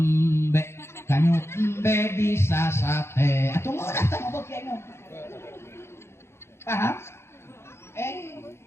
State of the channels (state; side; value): late; right; 0.12 ms